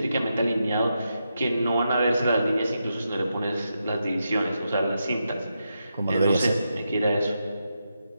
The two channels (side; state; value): both; inverted; correlation -0.85